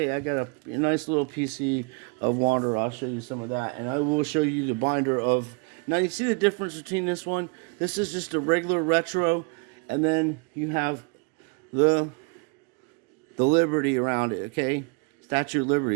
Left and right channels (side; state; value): left; quieter; 32.5 dB